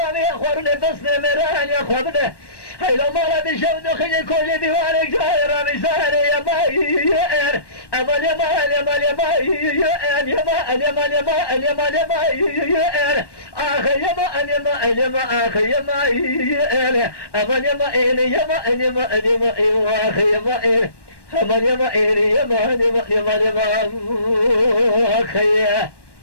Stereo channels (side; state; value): right; late; 1.1 ms